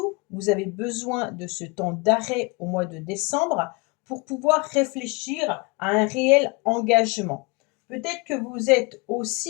vous avez besoin de ce temps d'arrêt au mois de décembre pour pouvoir réfléchir à un réel engagement. Peut-être que vous êtes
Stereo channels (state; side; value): quieter; right; 28.1 dB